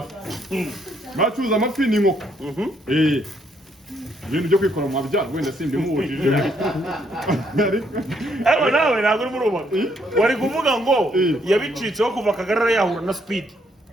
Acuruza amafi ni inkoko. Ibintu byo kwikora mu mabya wenda simbi muwujije. Ariko nawe ntabwo uri muruba. Wari kuvuga ngo yabicitseho kuva Kagarara yahura na Speed.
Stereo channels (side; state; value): both; normal; correlation 0.71